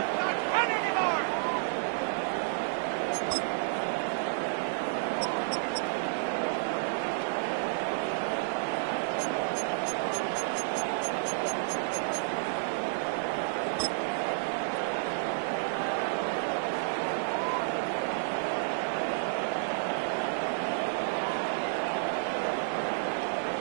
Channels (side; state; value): left; silent; 57 dB below the other